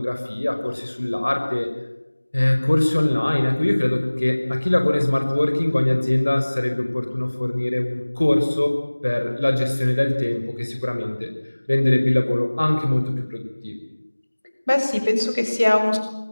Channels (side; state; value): both; inverted; correlation -1.00